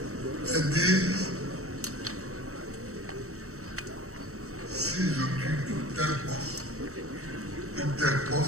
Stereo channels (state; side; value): late; left; 0.64 ms